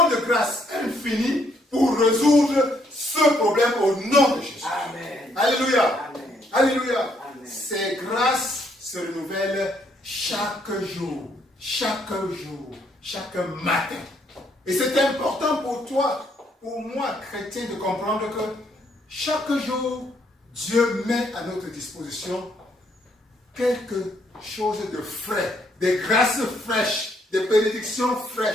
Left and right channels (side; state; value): both; normal; correlation 0.71